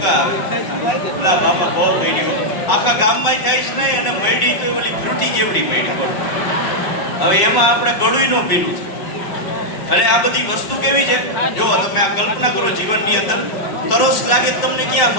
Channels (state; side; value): late; right; 5.2 ms